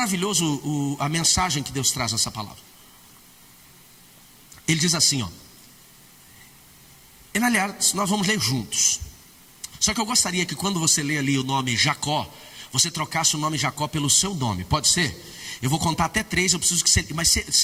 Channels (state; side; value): identical; both; correlation 1.00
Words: a mensagem que Deus traz nessa palavra. Ele diz assim, ó. Aliás, nós vamos ler juntos. Só que eu gostaria que quando você lê ali o nome Jacó, você trocasse o nome Jacó pelo seu nome, pode ser? Eu vou contar até 3, eu preciso que